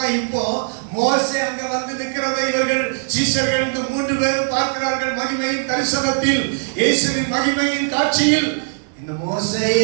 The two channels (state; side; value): silent; left; 62 dB below the other